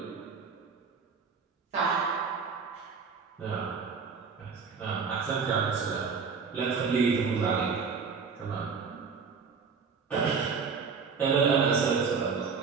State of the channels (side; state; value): left; quieter; 5.5 dB